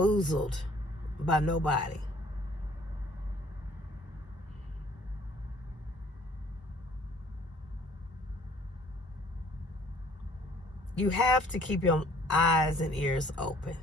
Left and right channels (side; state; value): both; normal; correlation 0.57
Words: by nobody. You have to keep your eyes and ears open.